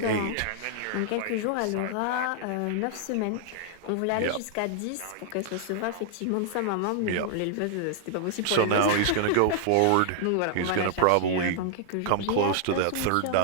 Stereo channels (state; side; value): different; both; correlation -0.01